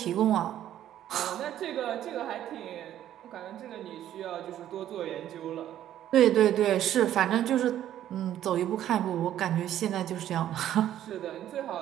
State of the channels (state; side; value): quieter; left; 11.7 dB